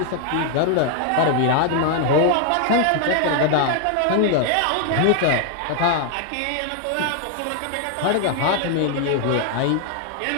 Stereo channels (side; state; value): both; different; correlation 0.00